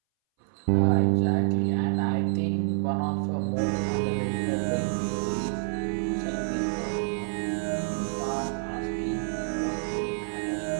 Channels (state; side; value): silent; left; 60 dB below the other